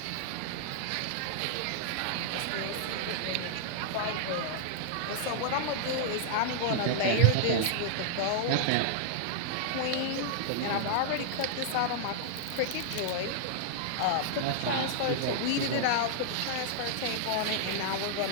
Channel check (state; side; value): different; both; correlation -0.01